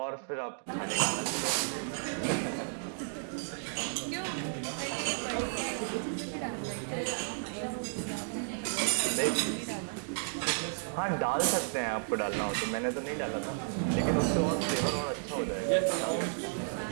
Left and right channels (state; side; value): silent; left; digital silence